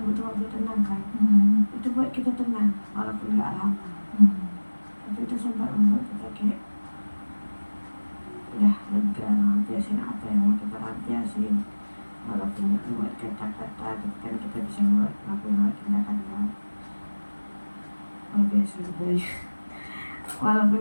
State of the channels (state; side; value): inverted; both; correlation -1.00